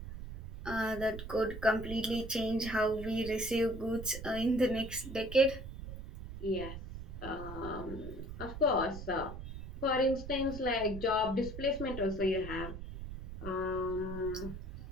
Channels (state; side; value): noise; right; rumble, 10 dB below the sound